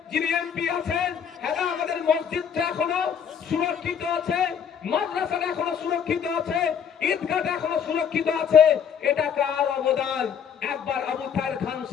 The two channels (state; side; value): quieter; right; 7.7 dB